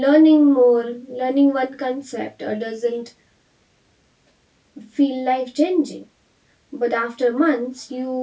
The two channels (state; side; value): identical; both; correlation 1.00